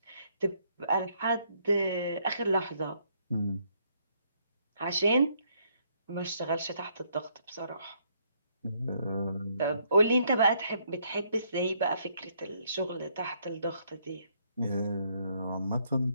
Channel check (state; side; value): inverted; both; correlation -0.71